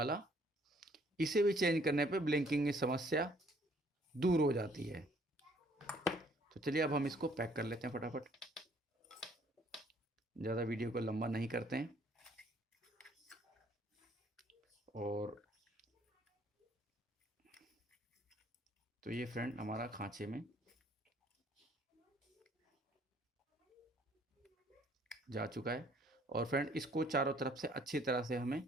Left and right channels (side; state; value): both; normal; correlation 0.62